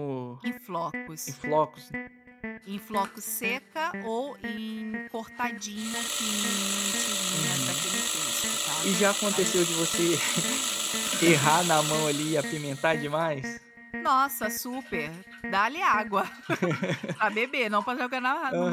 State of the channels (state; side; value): identical; both; correlation 1.00